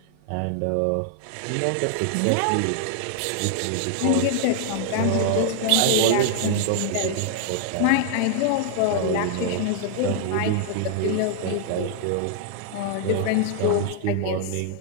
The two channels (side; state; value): both; different; correlation 0.00